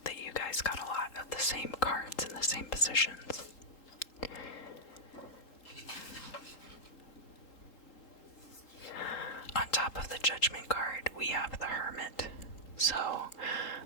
that you guys got a lot of the same cards in the same positions. On top of the Judgment card, we have the Hermit. So,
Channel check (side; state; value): right; late; 3.8 ms